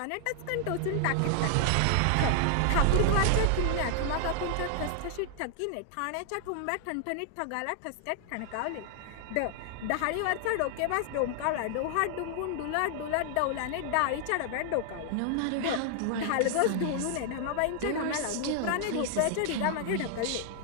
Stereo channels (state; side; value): different; both; correlation 0.00